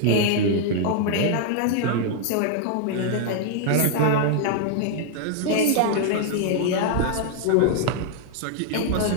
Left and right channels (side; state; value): both; different; correlation 0.00